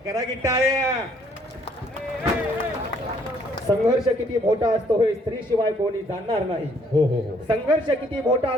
करा की टाळ्या. संघर्ष किती मोठा असतो हे स्त्री शिवाय कोणी जाणणार नाही. हो हो हो. संघर्ष किती मोठा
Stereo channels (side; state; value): both; normal; correlation 0.64